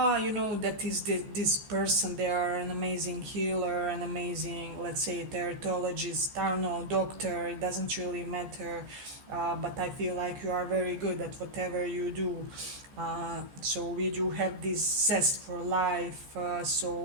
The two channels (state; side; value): late; left; 14 ms